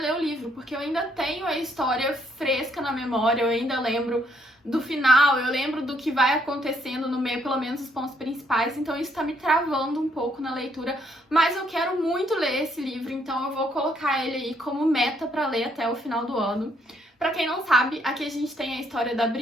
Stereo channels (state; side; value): normal; both; correlation 0.71